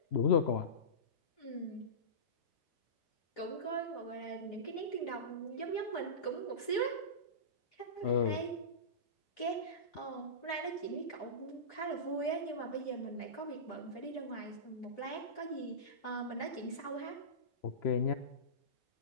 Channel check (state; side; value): late; right; 3.0 ms